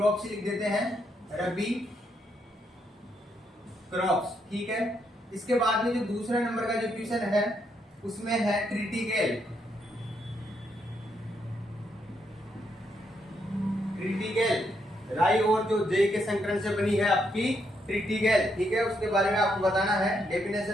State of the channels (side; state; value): both; normal; correlation 0.77